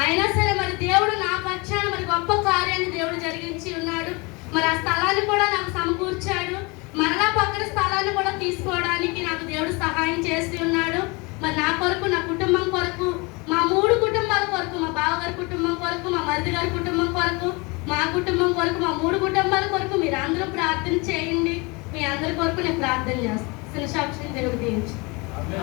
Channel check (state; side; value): quieter; right; 27.3 dB